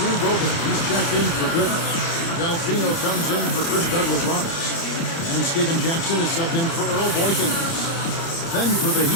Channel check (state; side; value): late; right; 30 ms